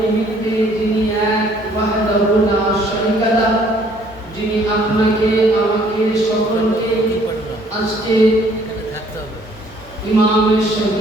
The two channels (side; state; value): both; normal; correlation 0.61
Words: নিমিত্তে যিনি এক ওয়াহদাহু লা শারীকা লাহ, যিনি আপনাকে আমাকে সকলকে আজকে ইমাম